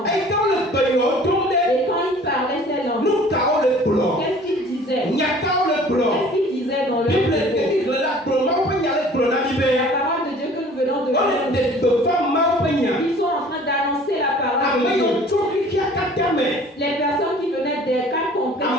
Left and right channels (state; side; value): normal; both; correlation 0.49